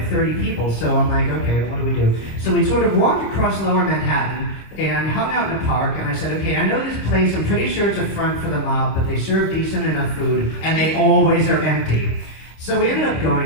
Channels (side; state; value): right; late; 26 ms